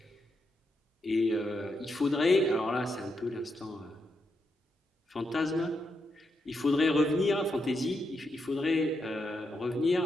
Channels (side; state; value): both; normal; correlation 0.83